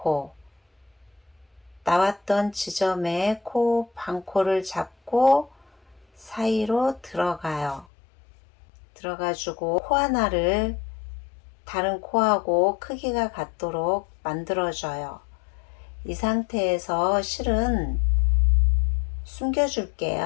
나왔던 지점에 코 반코를 잡고 사이로 들어가요. 들어가주고 코 하나를 다른 코하고 크기가 같도록 만들어줘요. 이 상태에서 실은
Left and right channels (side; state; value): right; drops out; at 7.9 s